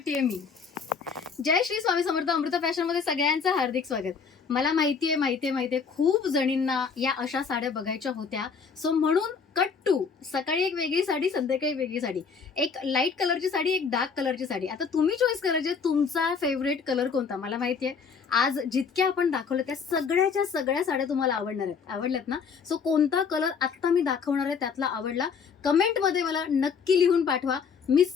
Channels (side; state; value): right; quieter; 5.8 dB